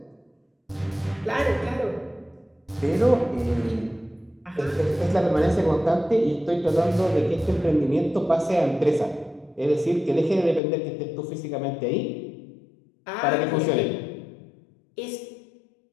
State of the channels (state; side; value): drops out; right; at 10.6 s